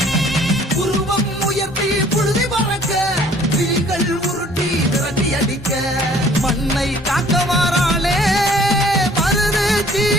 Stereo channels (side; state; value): both; normal; correlation 0.55